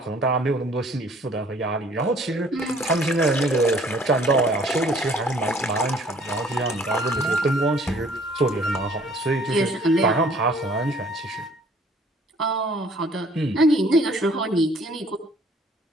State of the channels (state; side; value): normal; both; correlation 0.57